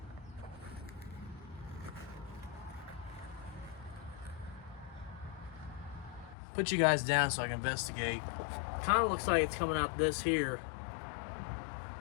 Put you guys down so I can investigate. Kind of looks like it's coming out this here.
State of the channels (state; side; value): drops out; right; at 6.4 s